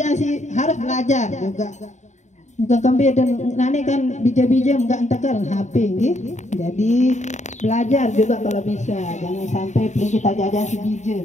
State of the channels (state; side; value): late; right; 0.34 ms